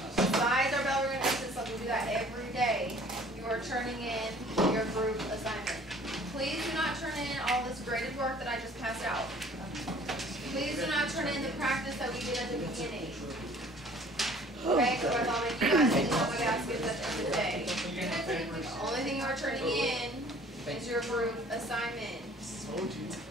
Besides our bell ring exit slip, we do that every day. You are turning in your group assignment. Please do not turn in all this graded work that I just passed out. Please do not turn in the practice that we did at the beginning. Okay, so I thought you guys didn't know my baskets at the end of the day. The only thing you are turning in is your group assignment.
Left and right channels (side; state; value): both; normal; correlation 0.52